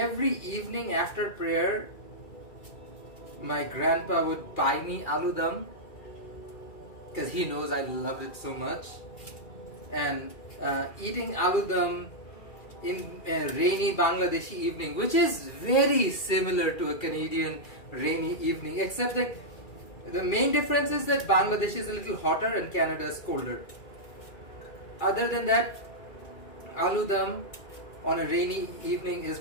evening after prayer, my grandpa would buy me aloo dum because he knows I loved it so much. And eating aloo dum in a rainy Bangladeshi evening, which is very similar to a Canadian rainy evening, except that the main difference is that Bangladesh is a little hotter and Canada is colder. Other than that, aloo dum on a rainy evening is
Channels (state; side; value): late; right; 2.3 ms